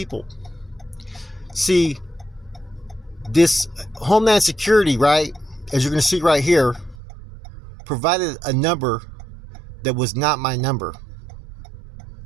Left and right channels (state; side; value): drops out; left; at 7.0 s